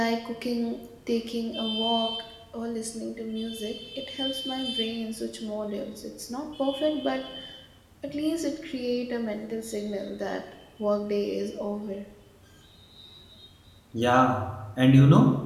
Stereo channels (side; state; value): both; identical; correlation 1.00